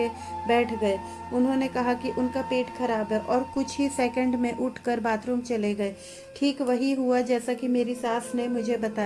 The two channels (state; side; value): identical; both; correlation 1.00